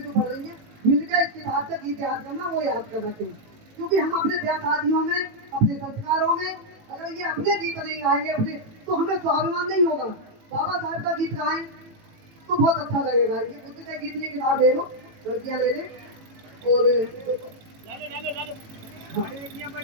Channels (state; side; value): late; left; 18 ms